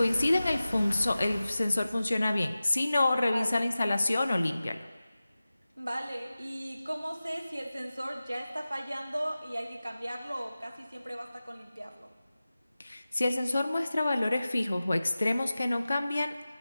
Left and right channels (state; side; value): inverted; both; correlation -0.96